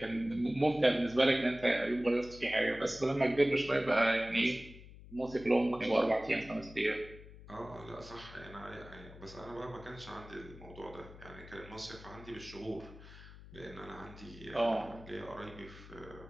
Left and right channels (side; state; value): left; noise; hum, 17 dB below the sound